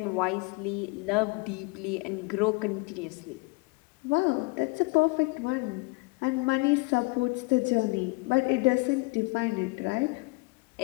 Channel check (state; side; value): quieter; right; 26.9 dB